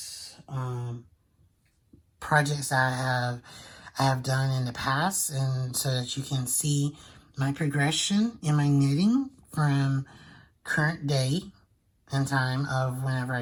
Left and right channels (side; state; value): both; identical; correlation 1.00